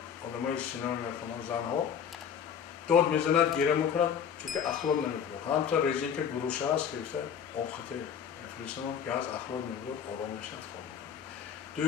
одамои синема мекунанд, занҳо дод мезанад, гира мекунад, чунки ахлод намекунад. Ҳамто резинка гуруша аст ки обхите мефиристанд, газ ахлод мебурад, ором мешавад, хоб мекунад.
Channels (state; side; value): quieter; right; 7.9 dB